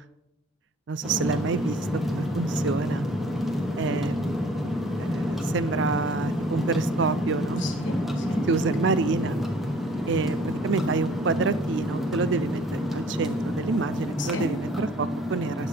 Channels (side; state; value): both; normal; correlation 0.52